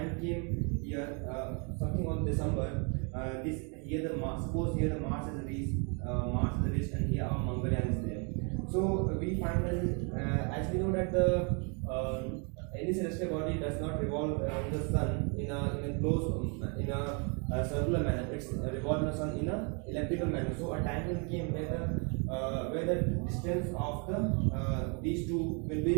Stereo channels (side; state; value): left; quieter; 36.0 dB